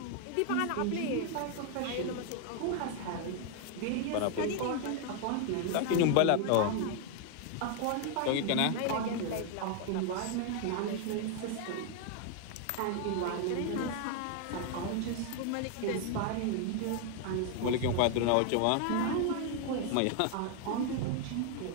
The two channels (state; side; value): different; both; correlation 0.00